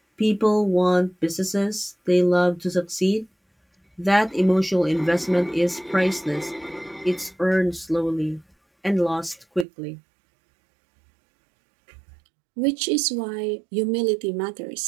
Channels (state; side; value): drops out; left; at 9.7 s